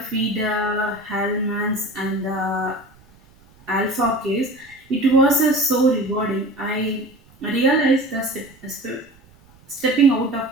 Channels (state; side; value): noise; right; rumble, 28 dB below the sound